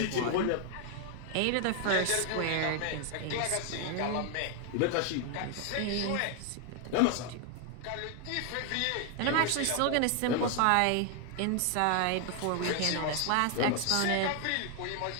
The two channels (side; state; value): both; different; correlation 0.00